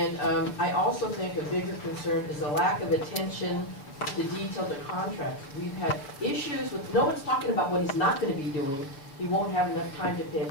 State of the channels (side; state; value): right; late; 7.0 ms